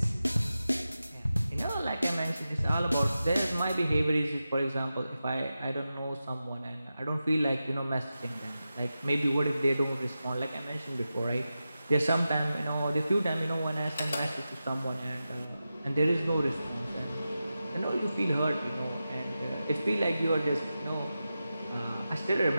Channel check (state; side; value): inverted; both; correlation -0.92